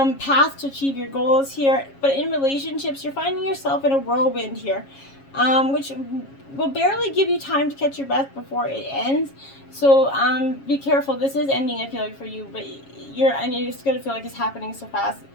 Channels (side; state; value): right; late; 7.3 ms